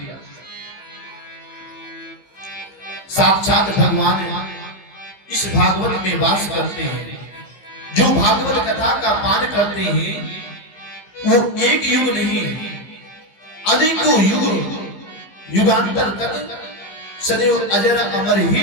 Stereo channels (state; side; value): late; right; 15 ms